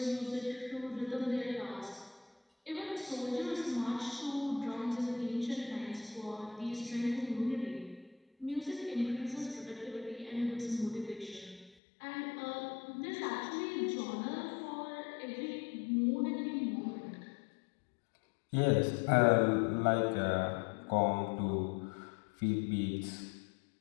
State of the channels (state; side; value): drops out; right; at 11.8 s